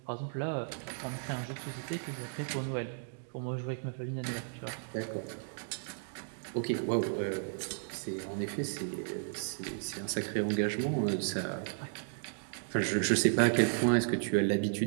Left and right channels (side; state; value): left; silent; digital silence